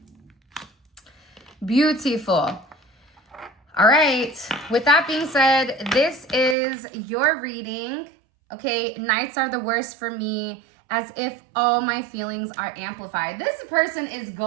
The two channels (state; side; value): drops out; left; at 6.6 s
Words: Beautiful. All right. With that being said, this is your reading. Okay. Nights are the worst for me, as if all my feelings are amplified. This person is